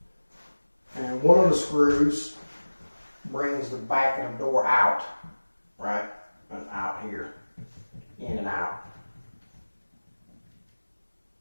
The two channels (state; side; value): inverted; both; correlation -1.00